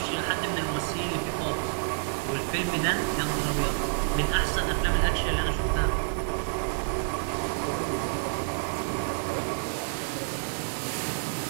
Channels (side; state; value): left; silent; digital silence